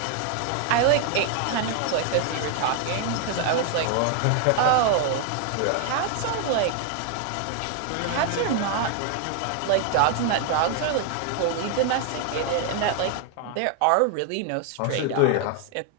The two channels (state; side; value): different; both; correlation 0.00